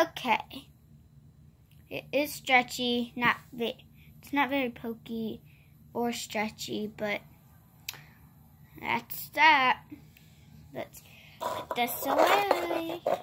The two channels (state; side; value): identical; both; correlation 1.00